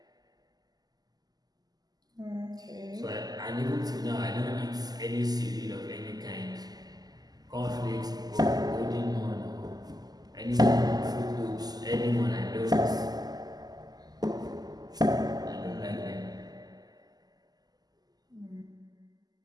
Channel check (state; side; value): late; left; 0.19 ms